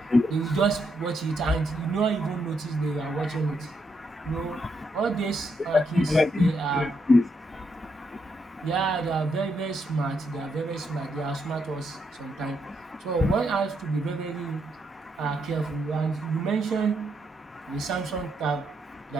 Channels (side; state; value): both; normal; correlation 0.78